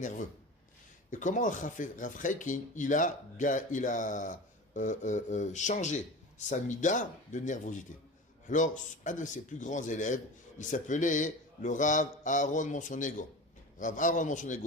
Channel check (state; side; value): normal; both; correlation 0.31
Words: Et comment Rav Chaikin, il a changé sa mida de nervosité. Alors, un de ses plus grands élèves, il s'appelait le Rav Aaron Monsonego. Rav Aaron